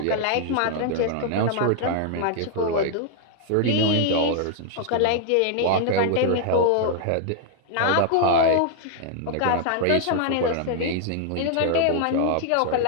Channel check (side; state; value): both; different; correlation -0.01